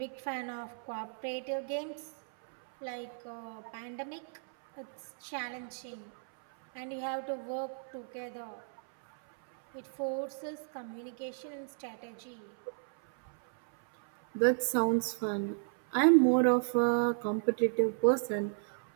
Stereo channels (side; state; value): left; silent; 55 dB below the other